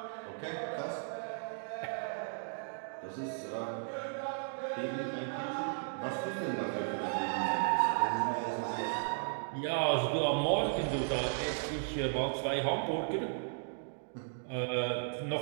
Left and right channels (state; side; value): silent; left; digital silence